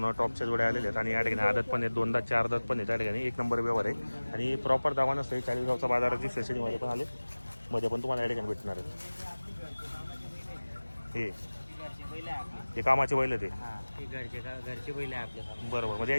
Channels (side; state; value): both; inverted; correlation -1.00